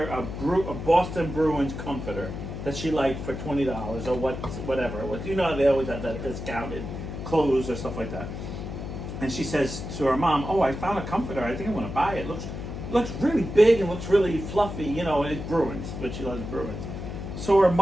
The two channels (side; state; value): left; noise; hum, 7 dB below the sound